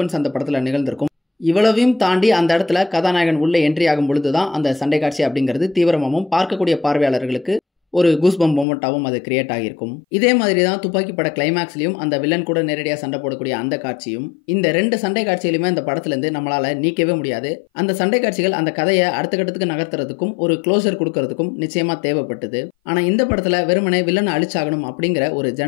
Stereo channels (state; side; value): drops out; right; at 8.7 s